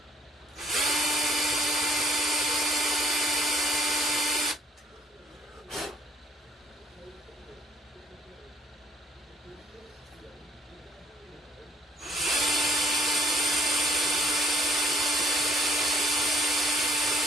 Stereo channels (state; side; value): normal; both; correlation 0.62